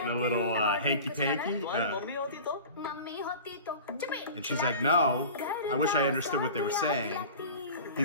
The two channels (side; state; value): both; inverted; correlation -0.37